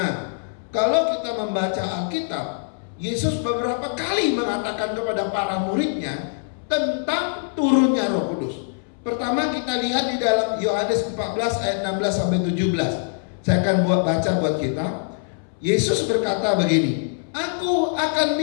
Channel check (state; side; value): silent; right; 63 dB below the other